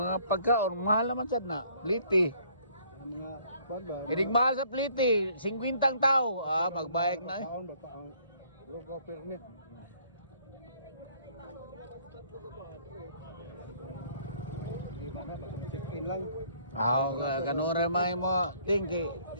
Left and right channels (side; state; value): both; inverted; correlation -0.61